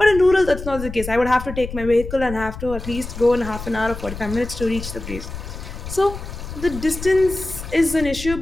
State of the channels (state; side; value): noise; left; rumble, 10 dB below the sound